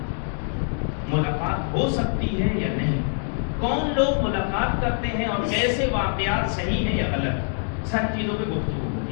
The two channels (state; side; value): silent; right; 62 dB below the other